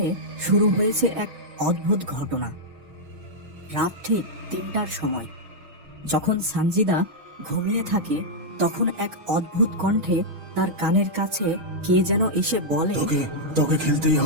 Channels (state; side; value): late; left; 6.3 ms